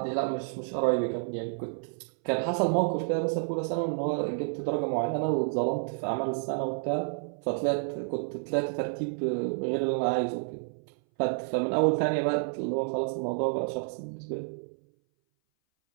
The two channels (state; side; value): silent; left; 58 dB below the other